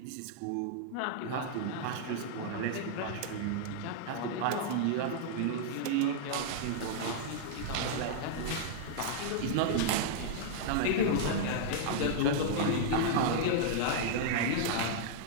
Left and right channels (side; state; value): both; different; correlation -0.01